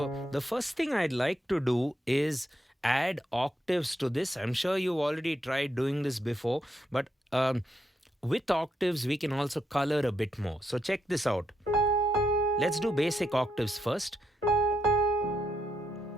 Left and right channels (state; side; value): normal; both; correlation 0.80